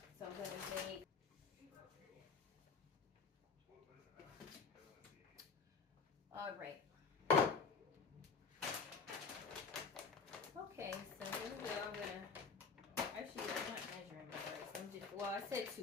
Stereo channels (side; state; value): right; quieter; 5.1 dB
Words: So I'm gonna make. All right. Okay, so here we go. I'm gonna. Actually, I'm not measuring my rice. I'm just. Well, I said 2